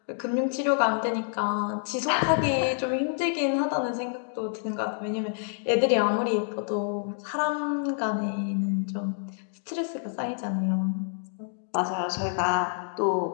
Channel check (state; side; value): silent; right; 60 dB below the other